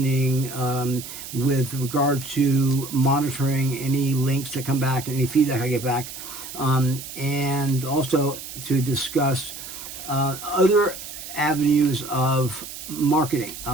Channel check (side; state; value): right; noise; hiss, 11 dB below the sound